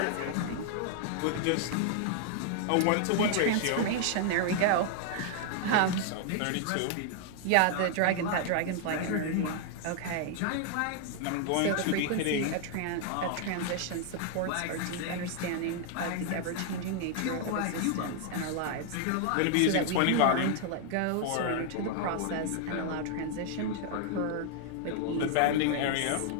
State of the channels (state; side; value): different; both; correlation 0.00